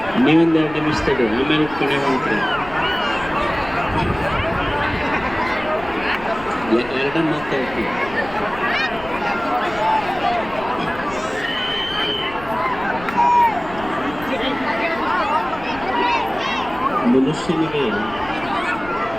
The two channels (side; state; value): left; noise; rumble, 16 dB below the sound